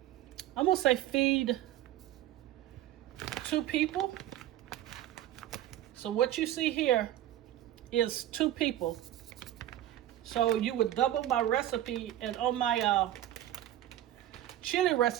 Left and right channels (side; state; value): left; quieter; 13.0 dB